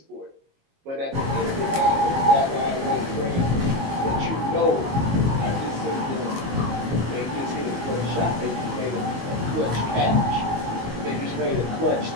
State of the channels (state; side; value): late; left; 22 ms